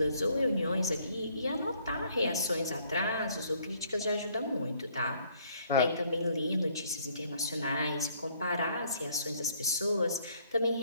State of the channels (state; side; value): inverted; both; correlation -0.64